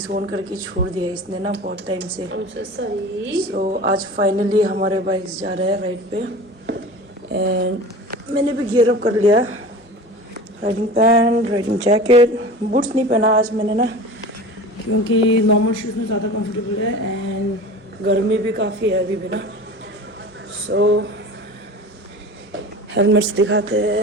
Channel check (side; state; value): both; normal; correlation 0.36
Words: करके छोड़ दिया इसने ना बहुत टाइम से। सो आज फाइनली हमारे बाइक्स जा रहे हैं राइड पे एंड मैंने भी गियर अप कर लिया। Riding pant, riding jacket, boots नहीं पहना आज मैंने ना, क्योंकि नॉर्मल शूज़ में ज़्यादा कंफर्टेबल है एंड गर्मी भी काफ़ी है अभी भी ना। सो हेलमेट्स दिखाते